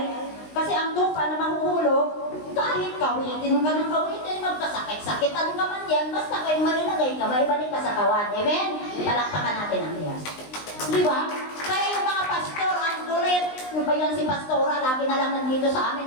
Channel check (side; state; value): right; late; 19 ms